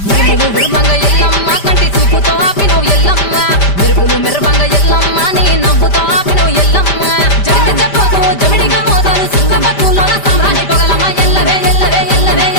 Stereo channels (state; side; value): late; right; 5.1 ms